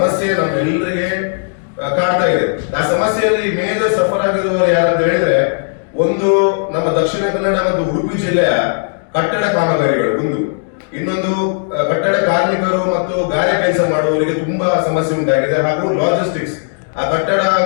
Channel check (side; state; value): right; silent; digital silence